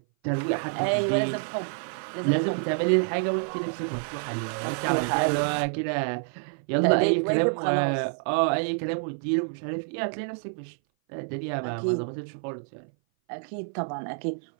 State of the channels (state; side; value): silent; left; 58 dB below the other